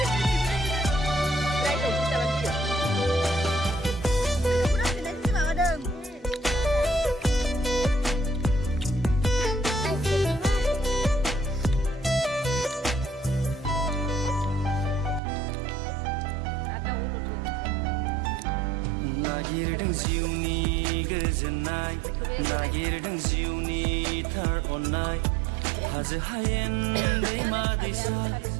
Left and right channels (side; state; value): left; drops out; at 15.2 s